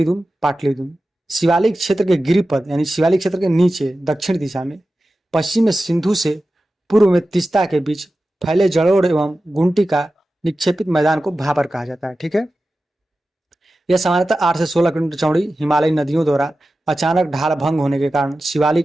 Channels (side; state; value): both; normal; correlation 0.94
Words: दून, पाटली दून। शिवालिक क्षेत्र के गिरिपद यानी शिवालिक क्षेत्र के नीचे दक्षिण दिशा में, पश्चिम में सिंधु से, पूर्व में तीस्ता के बीच फैले जलोढ़ एवं गुंटी का निक्षेपित मैदान को भाबर कहा जाता है। ठीक है, यह सामान्यतः 8 से 16 किलोमीटर चौड़ी हिमालयी नदियों द्वारा अचानक ढाल भंग होने के कारण